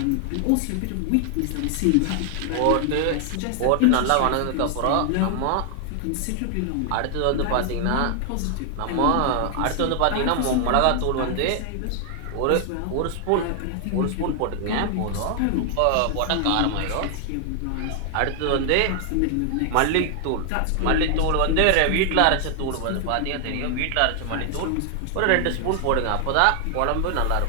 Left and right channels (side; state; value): both; different; correlation 0.00